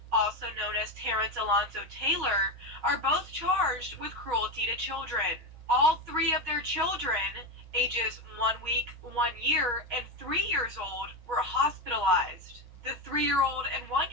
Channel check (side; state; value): left; late; 6.4 ms